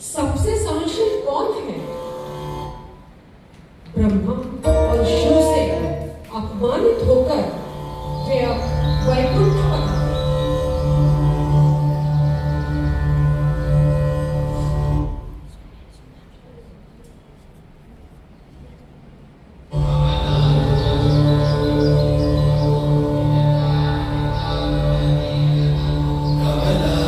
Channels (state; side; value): identical; both; correlation 1.00